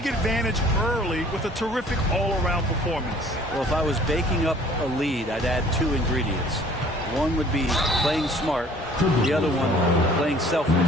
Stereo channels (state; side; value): normal; both; correlation 0.53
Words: advantage early with a terrific all-around performance. Well, if I was baking up a lead, I'd add 2 ingredients. One would be playing smart. The other one, playing